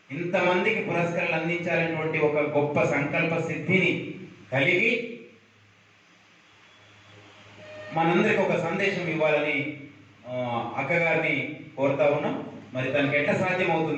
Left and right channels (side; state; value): both; identical; correlation 1.00